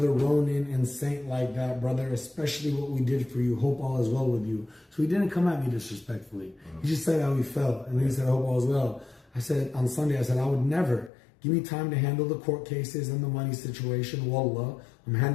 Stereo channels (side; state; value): right; drops out; at 11.1 s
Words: Ronin and Saint like that, brother, especially what we did for you. Hope all is well with you. So he didn't come at me disrespectfully. He just said how he felt. And then he said, hope all is well. I said, on Sunday, I said, I would never. Give me time to handle the court cases and the money situation. Wallah, I'm